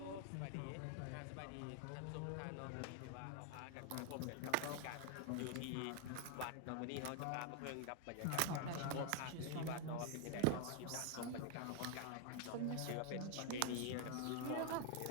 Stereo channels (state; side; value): different; both; correlation 0.00